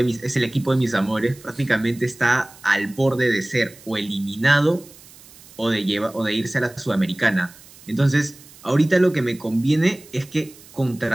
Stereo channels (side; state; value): right; noise; hiss, 22 dB below the sound